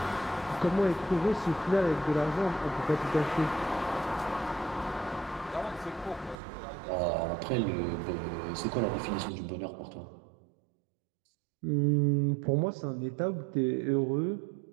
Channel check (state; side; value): drops out; left; at 6.4 s